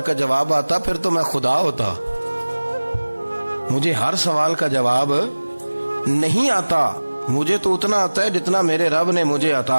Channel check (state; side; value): inverted; both; correlation -1.00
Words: کا جواب آتا پھر تو میں خدا ہوتا. مجھے ہر سوال کا جواب نہیں آتا، مجھے تو اتنا آتا ہے جتنا میرے رب نے مجھے